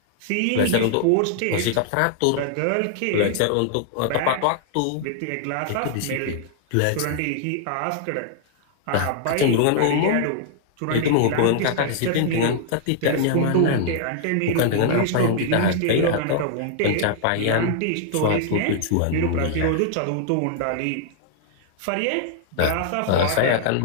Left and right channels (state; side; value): different; both; correlation 0.00